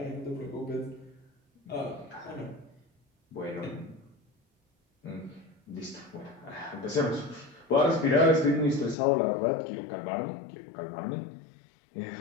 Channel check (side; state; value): right; drops out; at 9.0 s